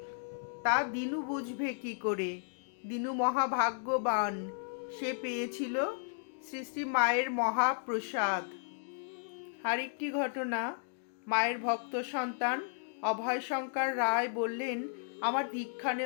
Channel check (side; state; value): right; silent; digital silence